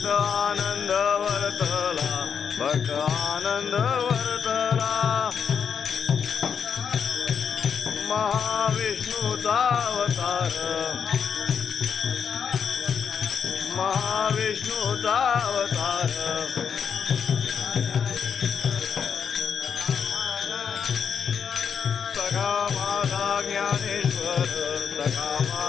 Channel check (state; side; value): quieter; right; 7.1 dB